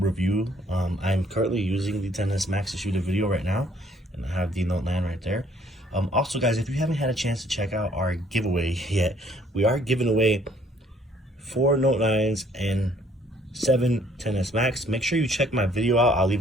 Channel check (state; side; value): normal; both; correlation 0.61